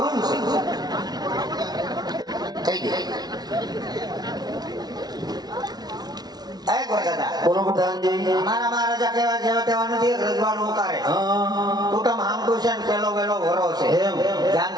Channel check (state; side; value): late; left; 0.19 ms